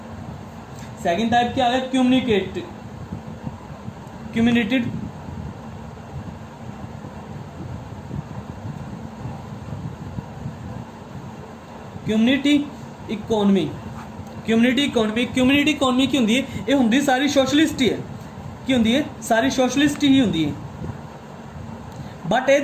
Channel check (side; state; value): both; identical; correlation 1.00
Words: सैकेंड टाइप क्या आ गया, कम्युनिटेड community economy. Community economy, community economy की होंदी है, ये होंदी सारी सोशलिस्ट ही है। की होंदी है, सारी सोशलिस्ट ही होंदी है। बट